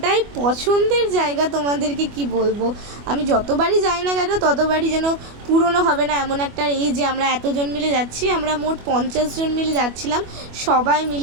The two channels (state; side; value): late; left; 25 ms